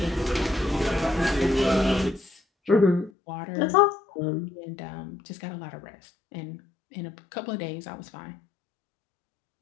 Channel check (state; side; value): drops out; right; at 3.1 s